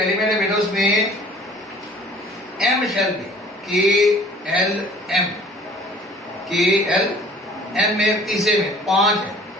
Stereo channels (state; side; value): normal; both; correlation 0.51